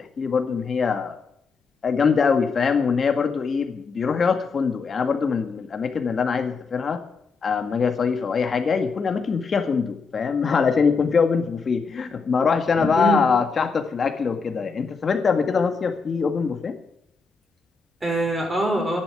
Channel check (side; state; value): right; quieter; 4.8 dB